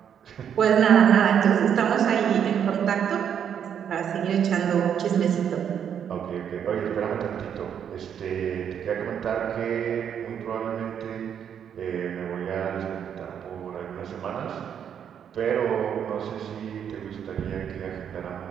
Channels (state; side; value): quieter; left; 8.5 dB